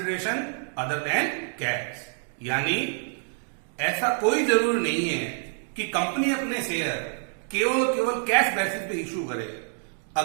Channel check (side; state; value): left; silent; 56 dB below the other